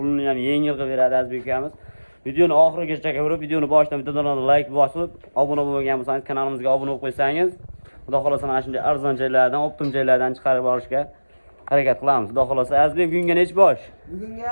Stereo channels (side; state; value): both; inverted; correlation -1.00